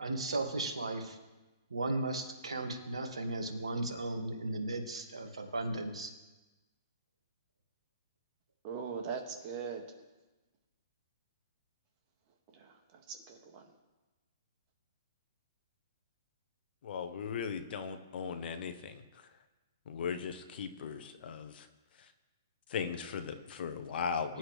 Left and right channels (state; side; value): inverted; both; correlation -0.57